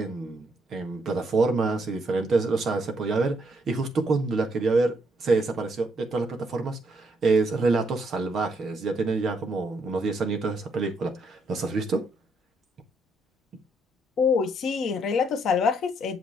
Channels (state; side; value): normal; both; correlation 0.73